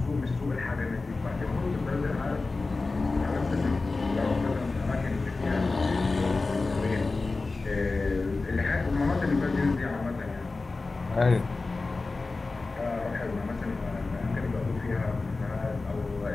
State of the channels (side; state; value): right; quieter; 3.7 dB